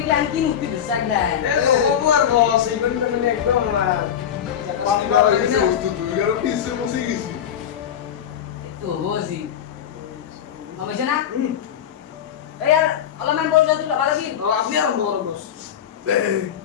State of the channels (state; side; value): quieter; right; 9.3 dB